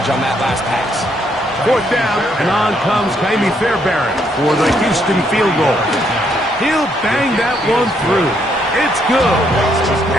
on that last pass. 4th down, and on comes Kaimi Fairbairn for the Houston field goal. He'll bang that one through. It's good.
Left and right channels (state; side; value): normal; both; correlation 0.72